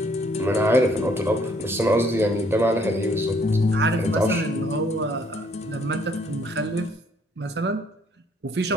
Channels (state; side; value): normal; both; correlation 0.65